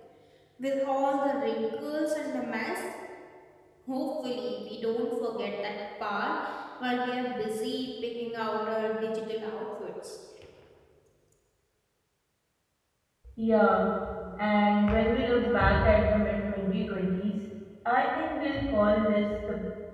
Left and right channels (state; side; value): identical; both; correlation 1.00